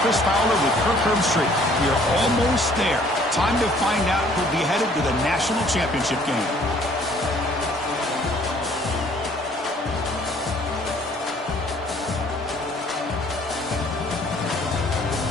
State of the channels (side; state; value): both; normal; correlation 0.58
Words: Chris Fowler with Kirk Herbstreit. We are almost there. Time to find out who'll be headed to the national championship game.